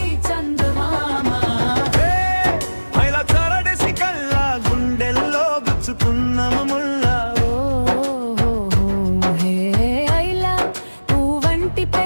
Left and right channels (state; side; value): inverted; both; correlation -1.00